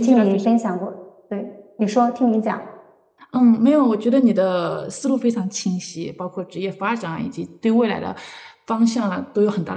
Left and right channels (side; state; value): both; identical; correlation 1.00